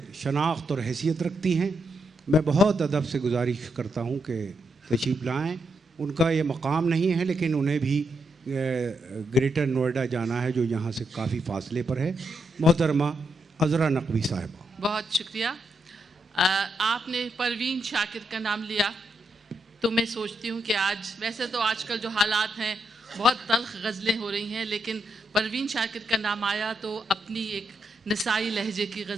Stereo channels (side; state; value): both; normal; correlation 0.81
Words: शनाख्त और हैसियत रखती हैं। मैं बहुत अदब से गुजारिश करता हूँ कि तशरीफ़ लाएँ। उनका ये मकाम नहीं है, लेकिन उन्हें भी ग्रेटर नोएडा जाना है जो यहाँ से काफ़ी फासले पर है। मोहतरमा अज़रा नकवी साहिबा, बहुत शुक्रिया। आपने परवीन शाकिर का नाम लिया तो मैं सोचती हूँ कि आज, वैसे तो आजकल जो हालात हैं बहुत तल्ख़ गज़लें हो रही हैं, लेकिन परवीन शाकिर का नाम आया तो अपनी एक नसाई लहजे की